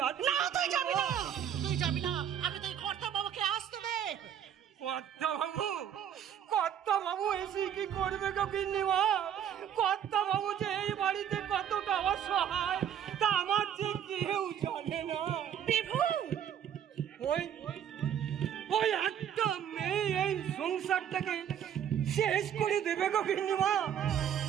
না তুই যাবি না, তুই যাবি না, আমি তুই কর্তা বাবাকে আসতে দে। কর্তা বাবু এসে কি করবে গো গিন্নিমা? কর্তা বাবু যে এই বাড়িতে কতটা অসহায় তা আমার যে কেউ জানে না। ওই একটা মেয়ে এই সংসারটাকে শেষ করে দেবে গো গিন্নিমা।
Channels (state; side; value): quieter; left; 9.3 dB